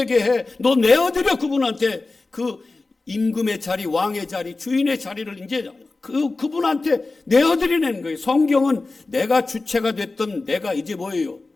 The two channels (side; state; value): right; quieter; 3.5 dB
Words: 해. 너 내어드려. 그분한테 그 임금의 자리, 왕의 자리, 주인의 자리를 이제 그분한테 내어드리는 거예요. 성경은 내가 주체가 됐던 내가 이제 뭐예요?